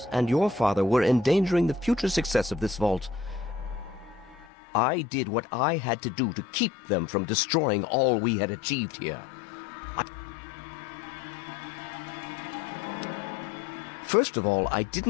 and your father were endangering the future success of this vault. I did what I had to do to keep them from destroying all we had achieved here. First of all, I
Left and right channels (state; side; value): drops out; right; at 4.5 s